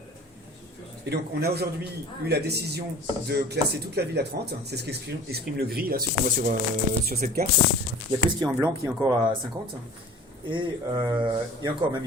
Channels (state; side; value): normal; both; correlation 0.43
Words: Et donc, on a aujourd'hui eu la décision de classer toute la ville à 30. C'est ce qu'exprime le gris, là, ce qu'on voit sur cette carte. Il n'y a que ce qui est en blanc qui est encore à 50. Et encore, même,